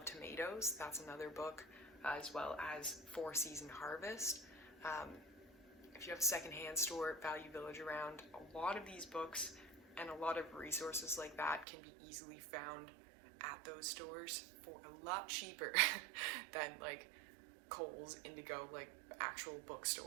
Tomatoes, that's another book, as well as 4 Season Harvest. If you have a secondhand store, Value Village around, a lot of these books and a lot of resources like that can be easily found at those stores for a lot cheaper than Kohl's, Indigo, actual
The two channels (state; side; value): drops out; left; at 11.7 s